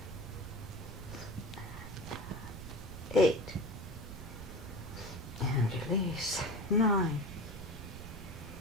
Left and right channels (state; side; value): noise; right; rumble, 12 dB below the sound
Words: 8, and release. 9